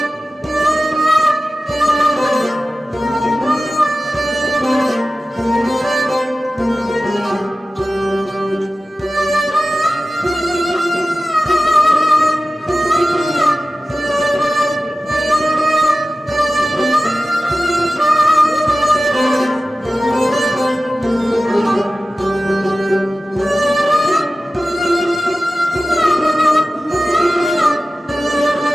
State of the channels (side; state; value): both; normal; correlation 0.95